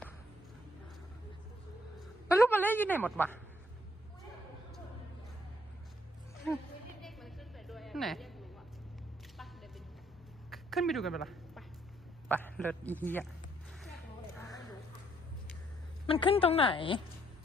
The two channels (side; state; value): both; normal; correlation 0.69